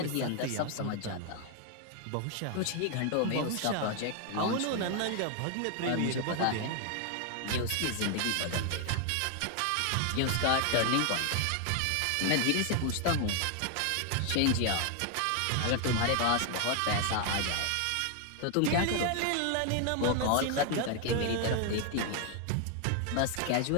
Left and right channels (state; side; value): different; both; correlation 0.00